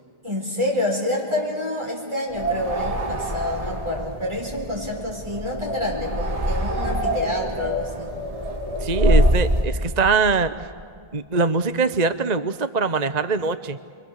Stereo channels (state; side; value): late; left; 1.9 ms